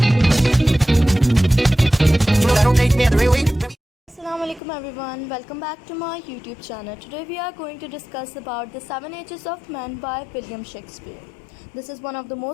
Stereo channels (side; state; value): right; drops out; at 4.6 s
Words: alaikum everyone, welcome back to my YouTube channel. Today we are going to discuss about The Seven Ages of Men by William Shakespeare. This is one of the